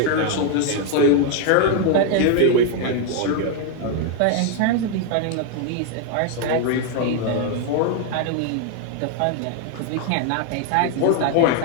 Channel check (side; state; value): both; different; correlation 0.00